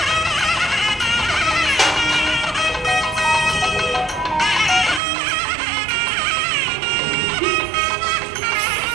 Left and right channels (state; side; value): drops out; left; at 5.0 s